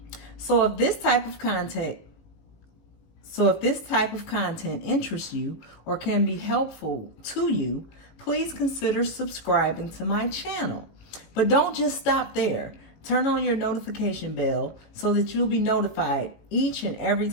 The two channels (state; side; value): late; right; 18 ms